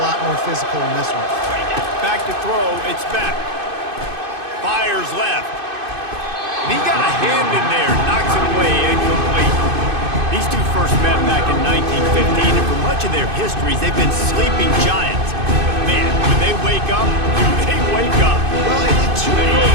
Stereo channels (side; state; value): left; late; 2.5 ms